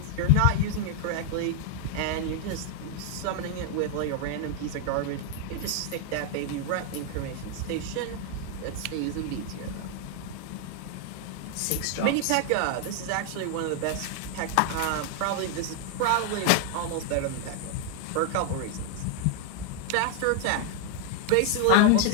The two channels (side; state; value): both; different; correlation 0.00